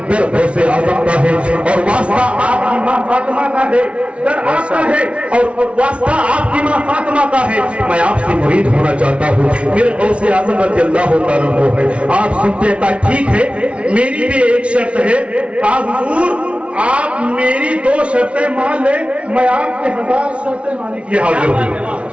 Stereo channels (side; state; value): left; late; 0.061 ms